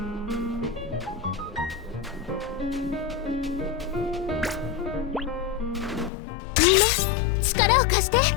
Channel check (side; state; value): right; drops out; at 6.1 s